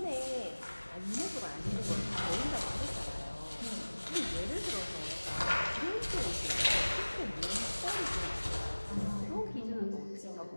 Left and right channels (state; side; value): inverted; both; correlation -1.00